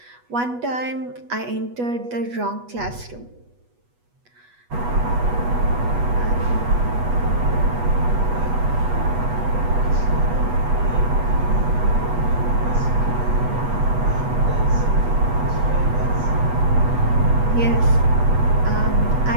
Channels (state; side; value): late; left; 8.2 ms